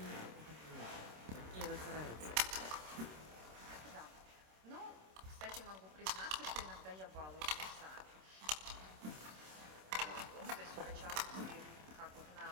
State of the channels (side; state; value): left; late; 26 ms